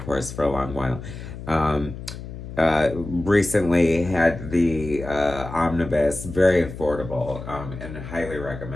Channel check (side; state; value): left; noise; hum, 11 dB below the sound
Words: for a long while. Recently had the omnibus, very affordable, and highly